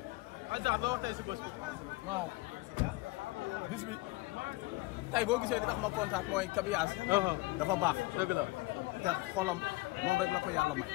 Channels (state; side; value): quieter; right; 21.7 dB